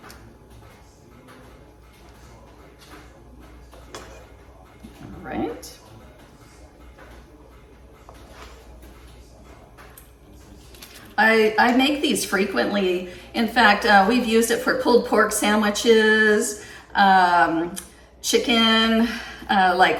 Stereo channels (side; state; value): both; identical; correlation 1.00